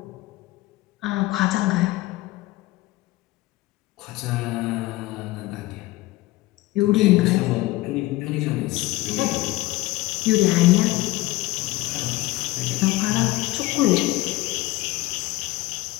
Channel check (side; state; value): right; quieter; 19.1 dB